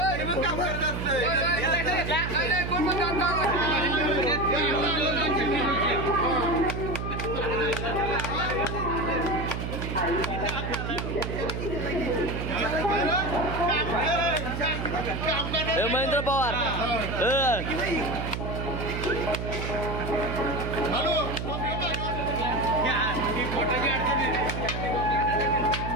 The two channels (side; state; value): right; noise; hum, 4 dB below the sound